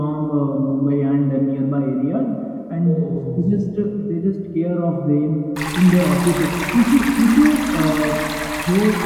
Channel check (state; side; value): identical; both; correlation 1.00